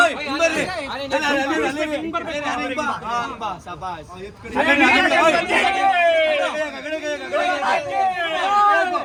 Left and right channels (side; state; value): both; identical; correlation 1.00